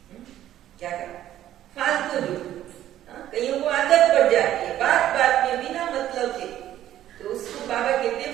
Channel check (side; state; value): left; quieter; 12.4 dB